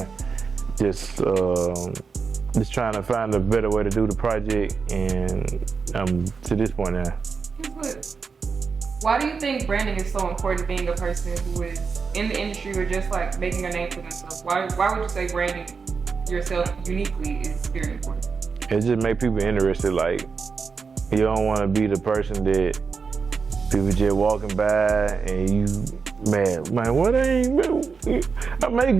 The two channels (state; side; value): quieter; left; 5.2 dB